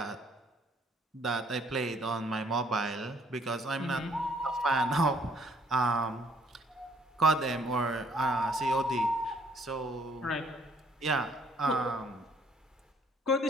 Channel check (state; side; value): normal; both; correlation 0.64